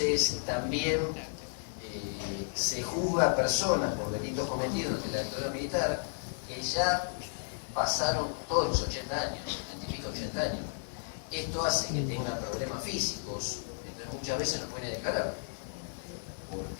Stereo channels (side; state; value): right; silent; 56 dB below the other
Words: también se juzga a personas por delitos cometidos ante la dictadura militar que ya pasaron todos los 80 años, 80 años. Esto hace que tengan problemas físicos, entonces muchas veces no pueden declarar,